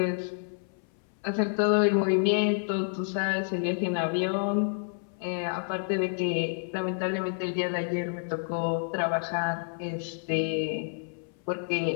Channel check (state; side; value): silent; right; 58 dB below the other